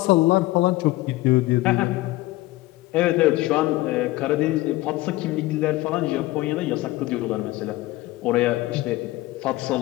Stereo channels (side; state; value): right; quieter; 18.6 dB